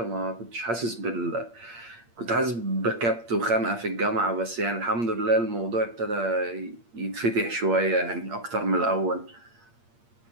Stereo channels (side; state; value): left; late; 8.6 ms